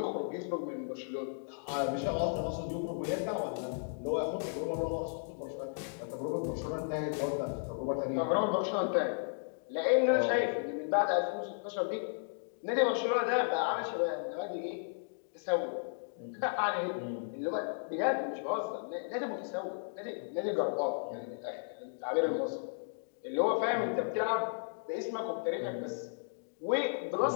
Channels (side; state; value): right; silent; digital silence